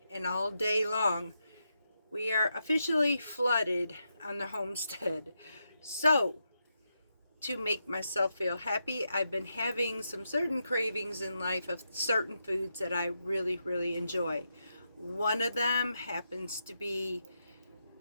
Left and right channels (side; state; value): both; inverted; correlation -0.84